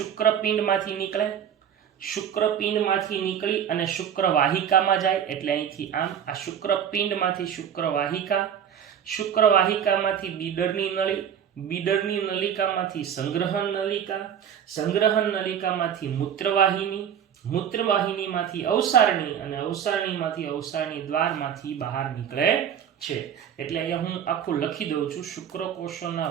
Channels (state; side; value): quieter; left; 8.9 dB